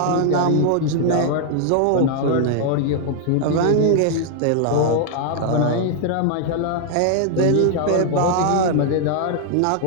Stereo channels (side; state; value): both; different; correlation 0.00